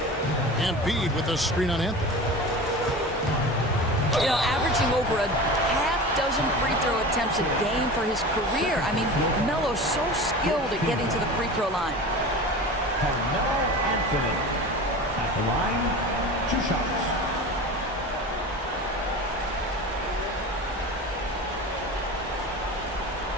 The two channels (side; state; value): both; normal; correlation 0.33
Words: Embiid with a screen on Anthony. You know, averaging over a half-dozen free throw attempts a game for his career. I mean, Melo's so skilled at getting to the free throw line. Carmelo Anthony at the line, 2 shots.